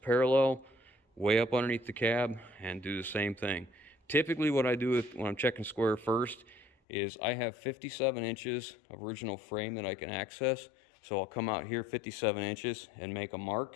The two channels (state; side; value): drops out; right; at 6.7 s